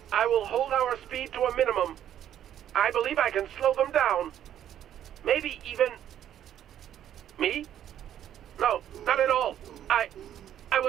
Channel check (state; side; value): quieter; left; 10.7 dB